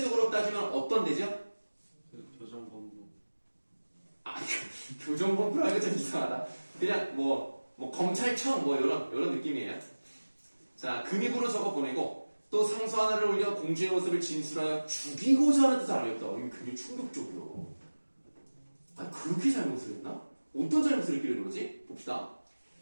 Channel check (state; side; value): inverted; both; correlation -1.00